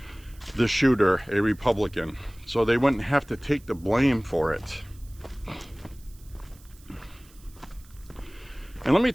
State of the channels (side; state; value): right; noise; hiss, 26 dB below the sound